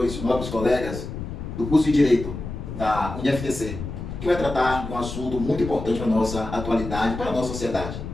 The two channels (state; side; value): noise; left; rumble, 8 dB below the sound